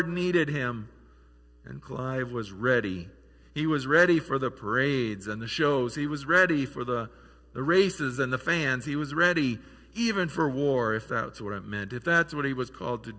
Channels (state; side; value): identical; both; correlation 1.00